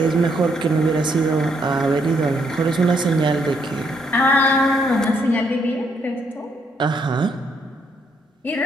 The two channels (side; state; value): both; normal; correlation 0.73